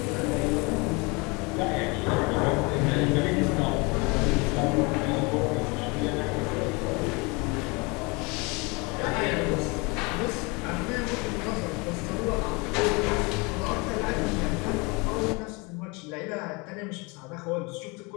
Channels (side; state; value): right; quieter; 28.2 dB